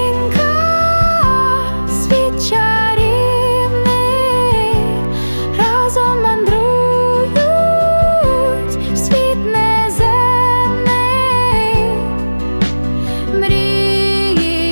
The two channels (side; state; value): both; inverted; correlation -1.00